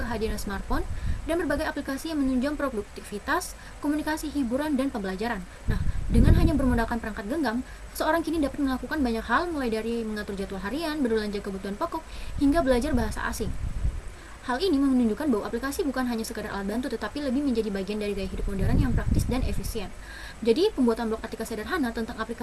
smartphone dan berbagai aplikasi yang menunjang produktivitas, komunikasi, hiburan, dan pembelajaran. Nah, dengan hanya bermodalkan perangkat genggam, seseorang kini dapat melakukan banyak hal, mulai dari mengatur jadwal harian, berbelanja kebutuhan pokok, hingga belajar bahasa asing. Hal ini menunjukkan bahwa aplikasi bukan hanya sekadar alat bantu, tetapi lebih menjadi bagian dari gaya hidup modern yang praktis dan efisien. Jadi, pembuatan blog artikel sederhana tentang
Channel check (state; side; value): identical; both; correlation 1.00